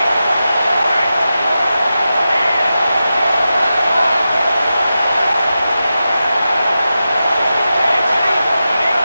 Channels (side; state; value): both; inverted; correlation -0.91